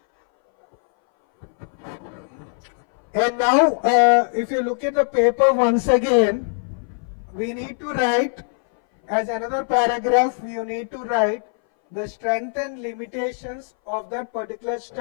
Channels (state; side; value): silent; right; 61 dB below the other